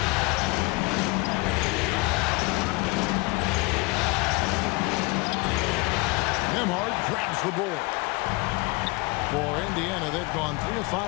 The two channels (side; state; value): right; quieter; 26.0 dB